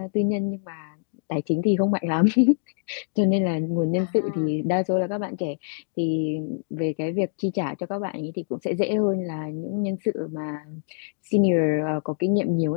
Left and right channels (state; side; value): silent; right; digital silence